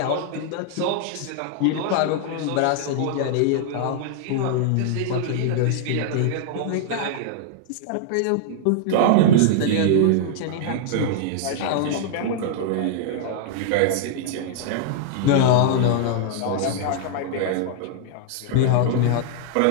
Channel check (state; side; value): different; both; correlation -0.01